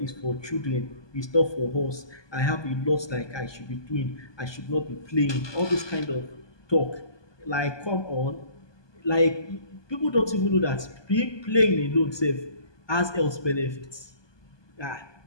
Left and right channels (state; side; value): late; right; 1.2 ms